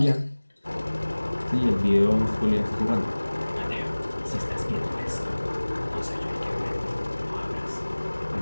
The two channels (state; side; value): inverted; both; correlation -1.00